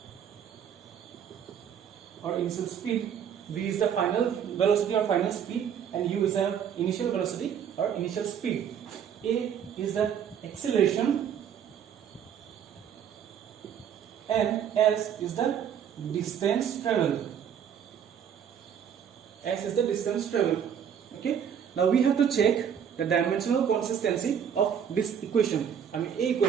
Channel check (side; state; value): left; quieter; 8.4 dB